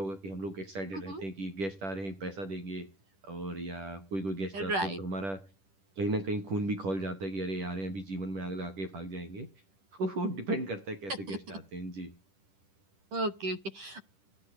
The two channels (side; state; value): left; late; 10 ms